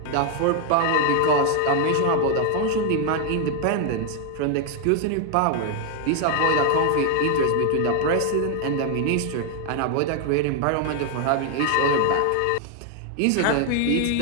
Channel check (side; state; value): both; different; correlation 0.01